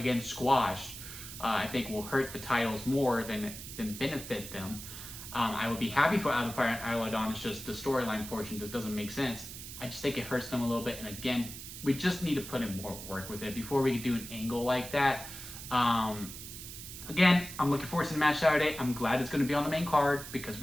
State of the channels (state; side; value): noise; right; hiss, 11 dB below the sound